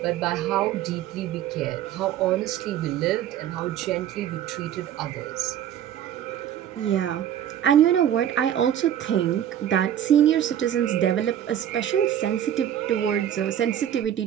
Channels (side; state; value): left; quieter; 10.5 dB